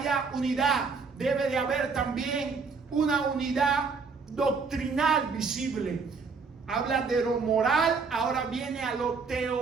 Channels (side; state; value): left; quieter; 4.9 dB